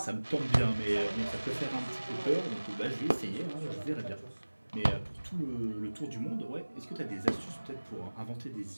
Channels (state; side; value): inverted; both; correlation -1.00